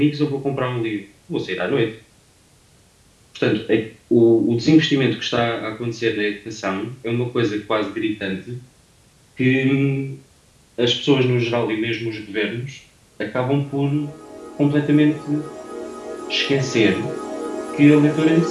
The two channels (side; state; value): both; identical; correlation 1.00